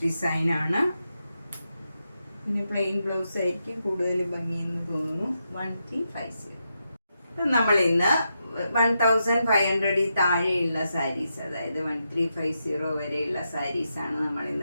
ഡിസൈനാണ്. പിന്നെ പ്ലെയിൻ ബ്ലൗസ് ആയിരിക്കും കൂടുതൽ ഭംഗിയെന്ന് തോന്നുന്നു. 1350. നമ്മൾ ഇന്ന് 1500 താഴെയുള്ള സാരീസ്, അതായത് 1350 വരെയുള്ള സാരീസാണ് നമ്മൾ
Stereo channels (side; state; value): both; inverted; correlation -0.85